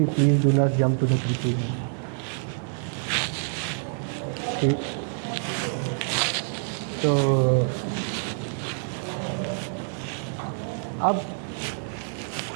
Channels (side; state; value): left; silent; 60 dB below the other